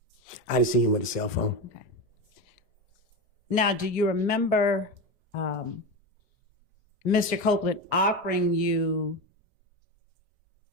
I didn't see him with a cell phone. Okay. Now, do you remember Mr. Copeland offering you,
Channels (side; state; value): both; normal; correlation 0.19